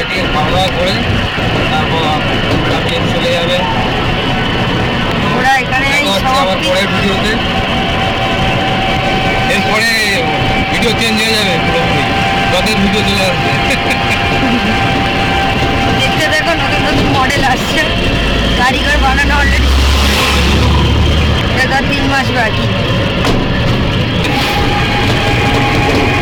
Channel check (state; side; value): identical; both; correlation 1.00